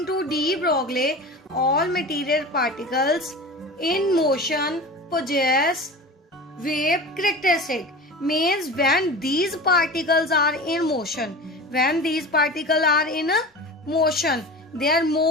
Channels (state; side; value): normal; both; correlation 0.33